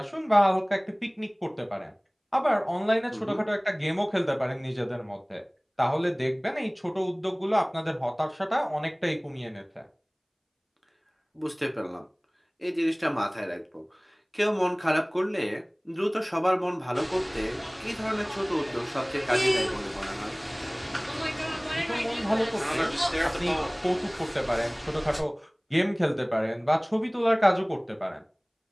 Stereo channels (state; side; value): identical; both; correlation 1.00